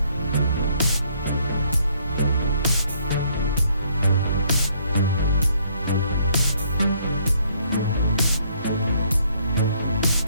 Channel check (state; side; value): inverted; both; correlation -0.66